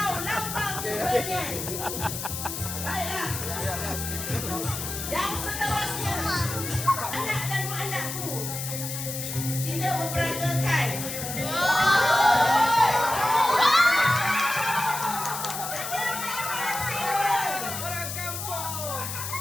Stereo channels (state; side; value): noise; left; hiss, 6 dB below the sound